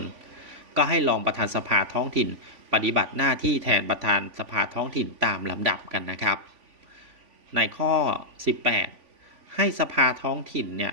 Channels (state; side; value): late; left; 3.5 ms